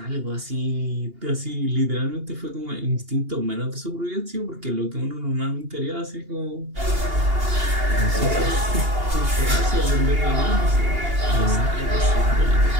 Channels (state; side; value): late; left; 2.8 ms